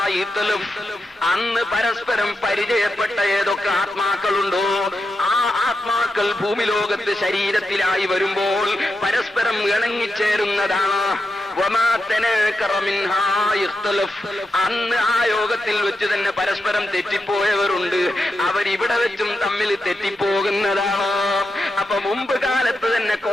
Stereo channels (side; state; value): both; normal; correlation 0.87